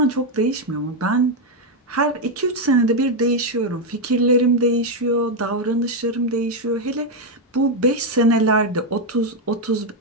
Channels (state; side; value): normal; both; correlation 0.03